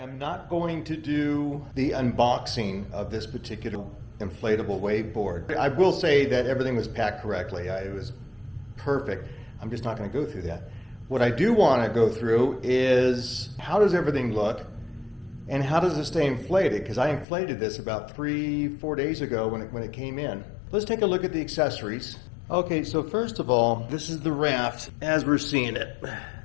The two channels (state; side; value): drops out; right; at 17.2 s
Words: not going to do the unboxing of this particular inflatable wakeboard. I will say that everything was packed correctly. It was perfect. I'm just not going to go through that. What I do want to go through is how does everything look and how does it stay inflated? Because I inflated this about 3-4 days ago when it came in. Let's take a look at the accessories. Okay, so first of all, this is the raft as we're seeing it.